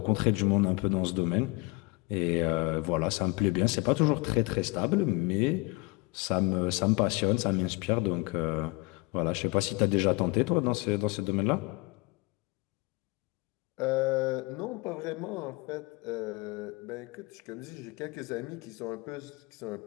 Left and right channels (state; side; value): quieter; right; 25.1 dB